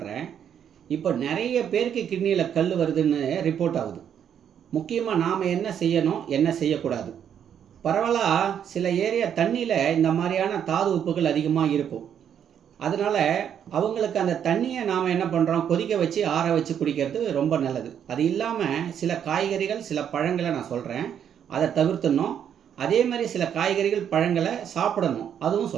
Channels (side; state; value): left; quieter; 8.8 dB